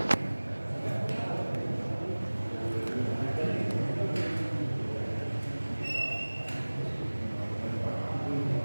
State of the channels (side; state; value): both; inverted; correlation -1.00